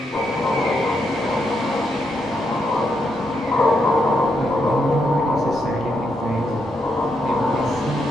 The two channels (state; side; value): normal; both; correlation 0.80